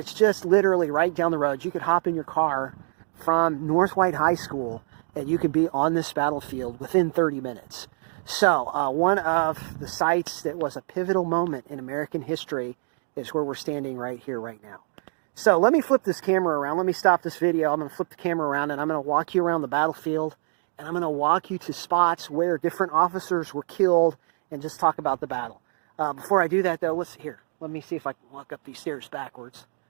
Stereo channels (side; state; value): left; silent; 61 dB below the other